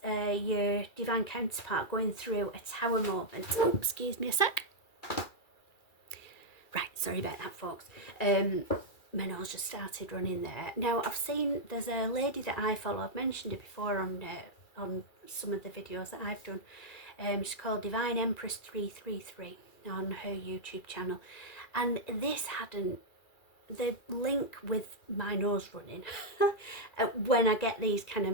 your divine counterpart going through a tower moment. Oh, excuse me a sec. Right, sorry about that, folks. My nose just started running there. Now I've seen there's a lady that I follow. I've mentioned it before on some of the videos that I've done. She's called Divine Empress 333 on her YouTube channel, and this hadn't the link with my nose running when I get these kind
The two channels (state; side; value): late; right; 2.3 ms